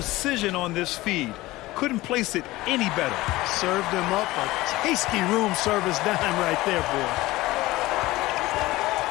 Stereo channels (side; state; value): right; quieter; 18.6 dB